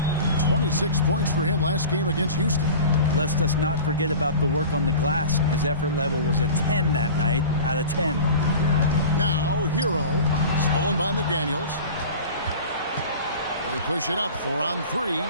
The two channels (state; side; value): inverted; both; correlation -0.37